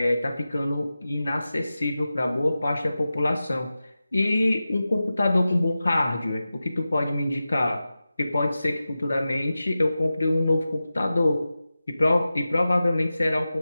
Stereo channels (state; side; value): inverted; both; correlation -0.94